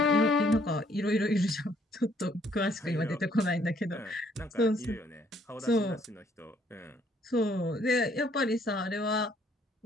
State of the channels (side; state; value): both; normal; correlation 0.65